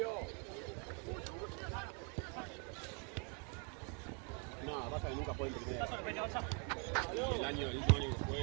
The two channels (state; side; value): quieter; left; 37.2 dB